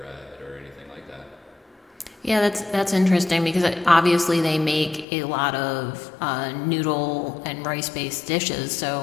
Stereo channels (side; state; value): right; drops out; at 5.1 s